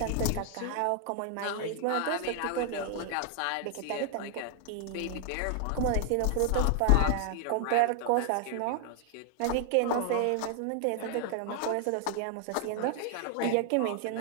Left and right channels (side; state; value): both; different; correlation 0.00